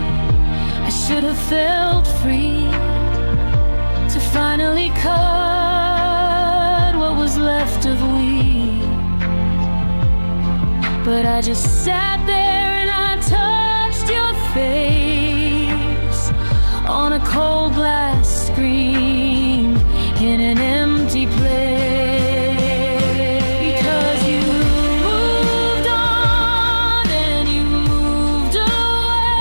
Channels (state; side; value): inverted; both; correlation -1.00